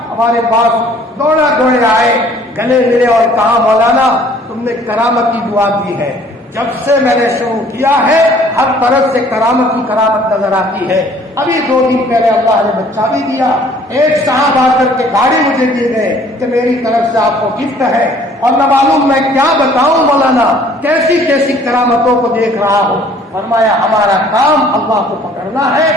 ہمارے پاس دوڑے آئے، گلے ملے اور کہا مولانا تم نے کرامت کی دعا دی ہے، جب سے میں نے شروع کیا ہے ہر طرف سے کرامت ہی کرامت نظر آتی ہے۔ ابھی 2 دن پہلے اللہ نے بچہ بھی دیا، ایک صاحب آ کر کے گاڑی مجھے دیے گئے کہ میری طرف سے آپ کو گفٹ ہے، اور نہ معلوم میں کیا بتاؤں مولانا، کیسی کیسی کرامتوں کو دیکھ رہا ہوں۔ فرمایا ہمارا کام اللہ کو پکڑنا ہے،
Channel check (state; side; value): normal; both; correlation 0.56